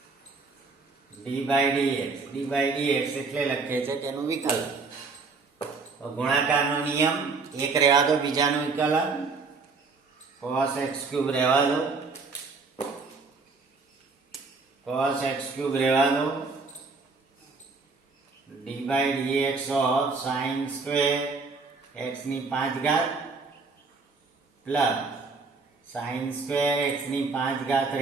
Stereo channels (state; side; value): quieter; left; 4.3 dB